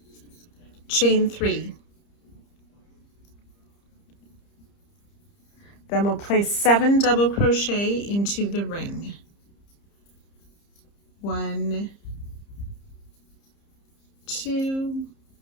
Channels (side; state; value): right; late; 30 ms